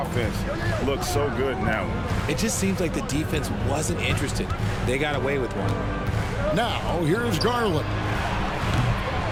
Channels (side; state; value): both; identical; correlation 1.00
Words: looks so good now. It just seems like the defense wasn't interested. They got away with one. Now, here's Garland.